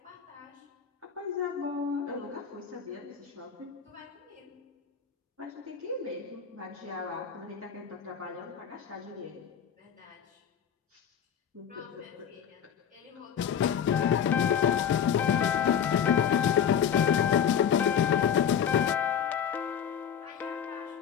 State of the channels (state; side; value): quieter; right; 8.4 dB